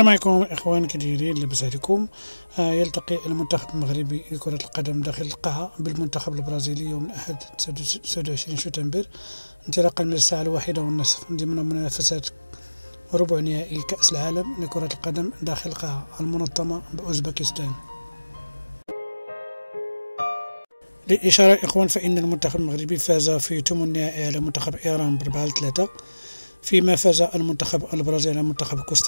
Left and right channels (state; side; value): inverted; both; correlation -1.00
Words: عليكم اخوان، كي دايرين؟ لاباس عليكم؟ يلتقي المنتخب المغربي لكرة القدم داخل القاعة بالمنتخب البرازيلي يوم الأحد 29 شتنبر انطلاقا من الساعة 1:30 ضمن منافسات ربع نهائي كأس العالم لكرة القدم داخل القاعة المنظمة بأوزبكستان. للإشارة إخوان، فإن المنتخب المغربي فاز في ثمن النهائي على منتخب إيران ب4-3، فيما فاز المنتخب البرازيلي على منتخب